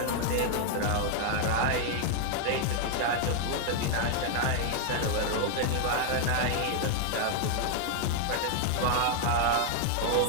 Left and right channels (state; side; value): different; both; correlation 0.00